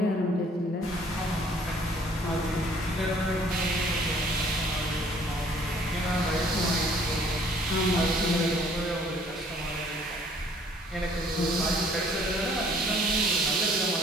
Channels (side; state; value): both; normal; correlation 0.58